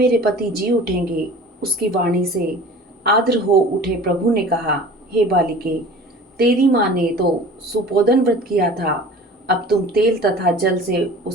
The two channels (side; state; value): both; normal; correlation 0.42